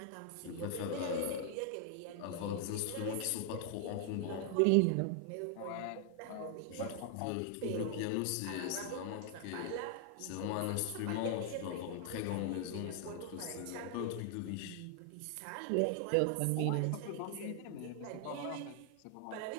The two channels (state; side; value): different; both; correlation 0.00